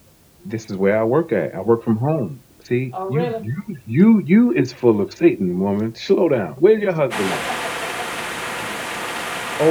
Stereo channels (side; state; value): both; identical; correlation 1.00